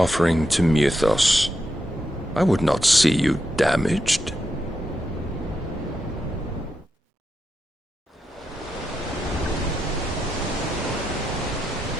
to Mythos. I would not see you damaged.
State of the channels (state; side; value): normal; both; correlation 0.85